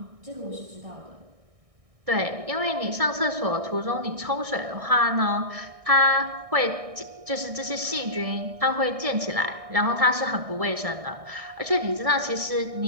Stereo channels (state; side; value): late; left; 1.6 ms